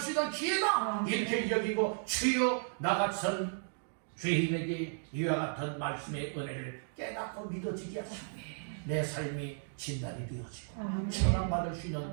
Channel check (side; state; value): left; silent; digital silence